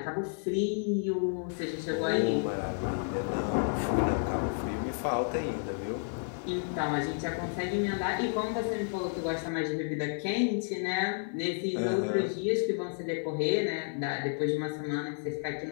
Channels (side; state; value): right; silent; 57 dB below the other